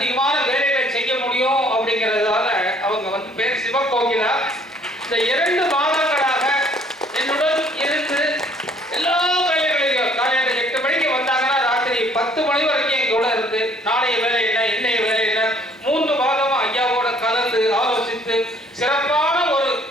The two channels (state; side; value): normal; both; correlation 0.60